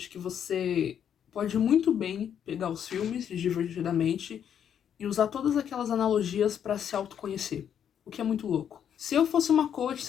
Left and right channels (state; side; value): quieter; right; 8.8 dB